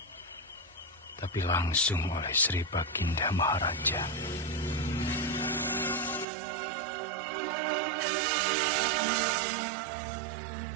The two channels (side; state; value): left; drops out; at 6.2 s